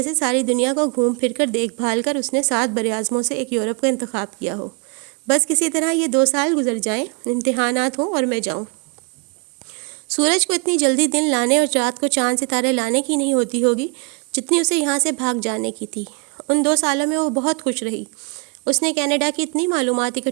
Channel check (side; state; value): left; quieter; 34.6 dB